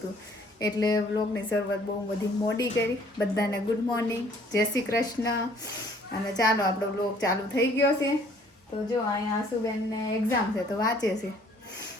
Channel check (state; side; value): normal; both; correlation 0.58